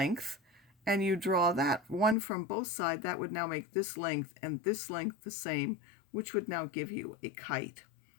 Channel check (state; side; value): drops out; right; at 2.1 s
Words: and you draw that one from both sides. That would now make this length and this length the same, which would now give you a kite.